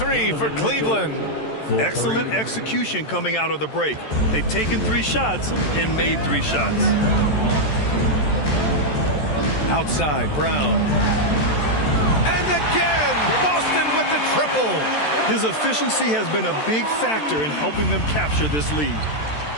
for Cleveland. Excellent execution coming out of the break. They've taken 3 shots and made 3 shots. Outside, Brown. And again, Boston with the triple. His efficiency has been a big factor in helping them capture this lead.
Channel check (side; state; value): right; late; 13 ms